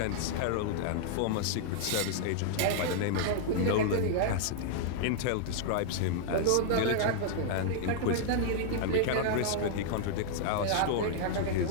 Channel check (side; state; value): both; different; correlation -0.01